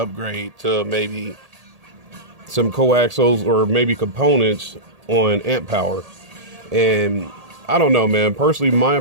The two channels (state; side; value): late; left; 1.8 ms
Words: to maybe some coaxials or maybe components on amp power. And I don't know, man. Personally, my